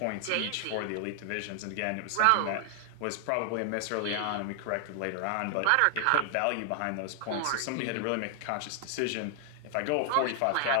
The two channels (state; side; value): different; both; correlation 0.00